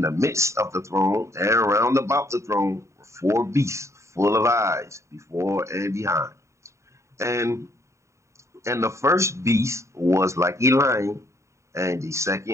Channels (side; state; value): left; late; 0.14 ms